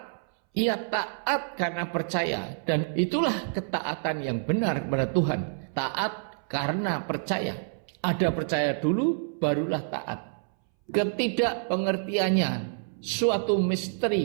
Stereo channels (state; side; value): silent; left; 60 dB below the other